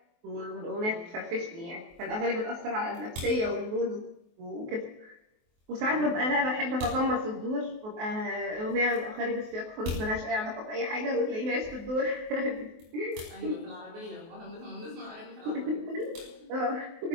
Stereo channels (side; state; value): left; late; 23 ms